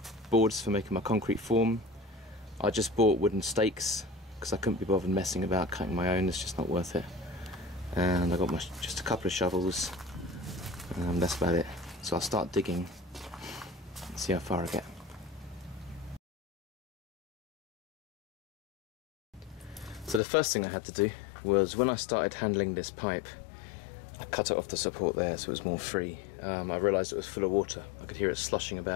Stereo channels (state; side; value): drops out; right; at 20.2 s